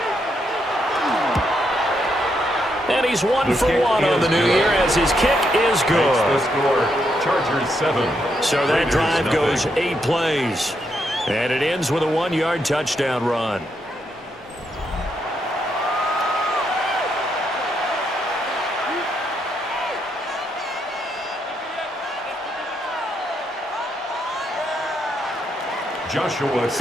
And he's 1 for 1 on the new year as his kick is good. The score, Chargers 7. So that drive goes 8 plays. And it ends with a 1-yard touchdown run. Joshua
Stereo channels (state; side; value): normal; both; correlation 0.78